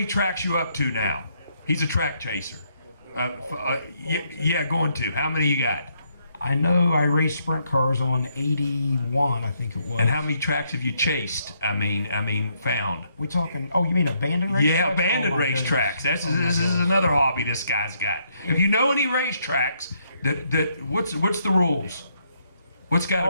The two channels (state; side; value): inverted; both; correlation -0.74